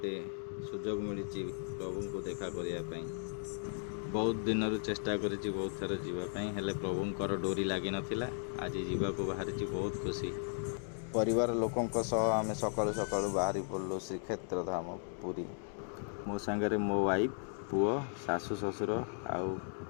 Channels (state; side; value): silent; right; 54 dB below the other